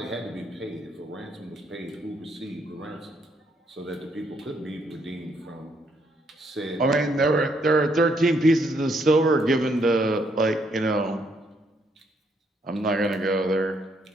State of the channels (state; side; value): normal; both; correlation 0.72